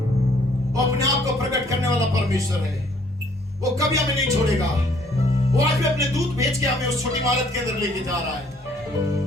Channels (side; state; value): both; normal; correlation 0.62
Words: वो अपने आप को प्रकट करने वाला परमेश्वर है। वो कभी हमें नहीं छोड़ेगा। वो आज भी अपने दूत भेज के हमें उस छोटी इमारत के अंदर लेके जा रहा है।